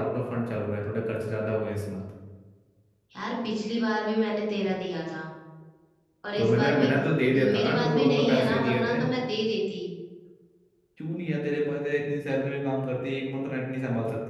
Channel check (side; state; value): both; identical; correlation 1.00